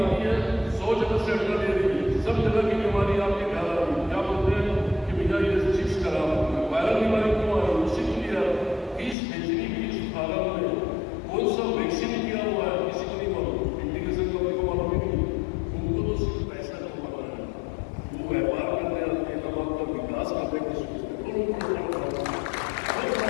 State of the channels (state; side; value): drops out; right; at 9.2 s